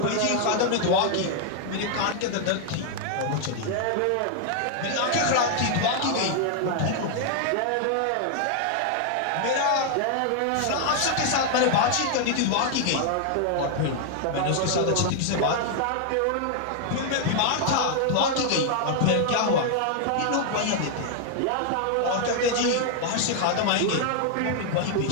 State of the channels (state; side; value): different; both; correlation 0.00